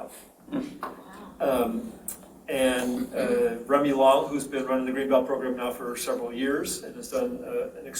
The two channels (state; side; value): identical; both; correlation 1.00